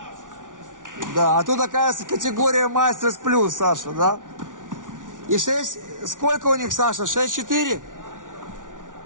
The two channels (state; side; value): late; left; 0.88 ms